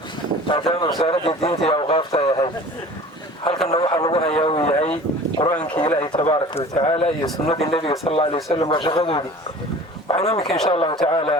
بعدين وزارة الدين تي أوقافها يا هاي هل كان نوح الله يا هاي قرآن كي إلهي تبارك وتعالى يسنة النبي صلى الله عليه وسلم وشغله دي وعنامك إن شاء الله تعالى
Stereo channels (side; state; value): both; normal; correlation 0.43